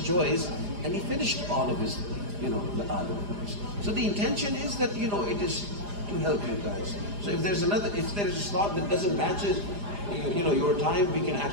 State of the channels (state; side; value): late; left; 4.9 ms